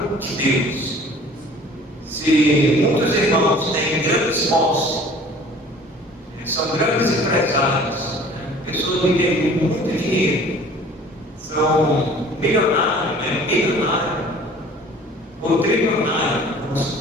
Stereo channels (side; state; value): both; normal; correlation 0.49